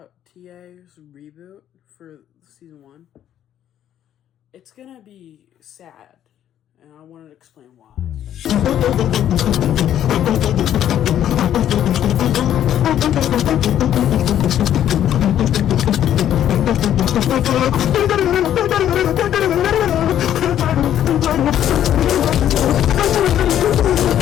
TA's reboot for season 1. It's gonna be sad, and I wanted to explain why.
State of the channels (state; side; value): quieter; right; 10.9 dB